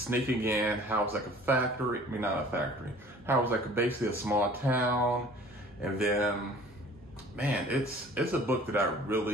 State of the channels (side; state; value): both; normal; correlation 0.49